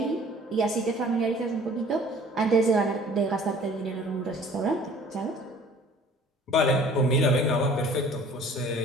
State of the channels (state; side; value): normal; both; correlation 0.51